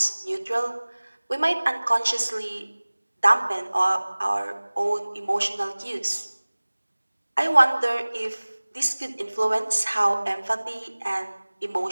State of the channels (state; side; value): inverted; both; correlation -1.00